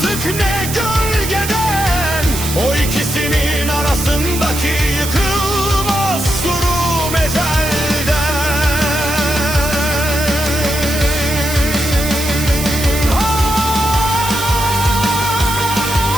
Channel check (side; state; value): right; noise; hiss, 6 dB below the sound